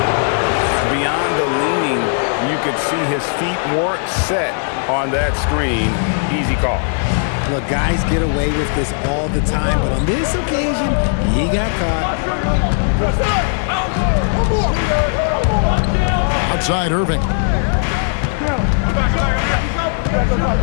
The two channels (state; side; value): silent; right; 66 dB below the other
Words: Beyond the leaning, you could see his feet weren't set on that screen. Easy call. Look, guys get away with this all the time, but on this occasion, he got caught. Outside Irving.